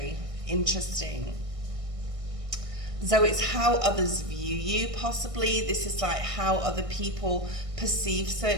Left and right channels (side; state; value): left; late; 1.6 ms